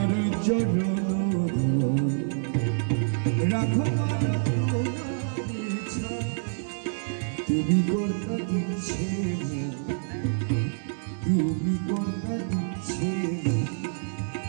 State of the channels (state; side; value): silent; left; digital silence